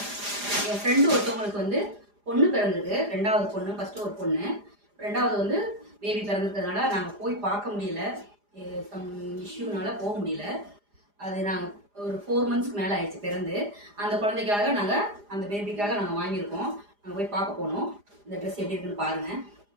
என் ஃப்ரெண்டு ஒருத்தவங்களுக்கு வந்து பொண்ணு பிறந்திருக்கு, ரெண்டாவது பொண்ணு. ஃபஸ்ட்டு ஒரு பொண்ணு, ரெண்டாவது வந்து பேபி பிறந்திருக்கிறதுனால நாங்கள் போய் பார்க்க முடியல, சம் இஷ்யூனால போக முடியல. அது நாங்கள் ஒரு 4 months மேலே ஆயிடுச்சு பிறந்து. அந்த குழந்தைக்காக நாங்கள் அந்த பேபிக்காக நாங்கள் வாங்கியிருக்கோம். நாங்கள் போய் பார்க்க போனோம். இந்த ட்ரெஸ் எப்படி இருக்குன்னு பாருங்கள்.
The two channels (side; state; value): left; late; 4.9 ms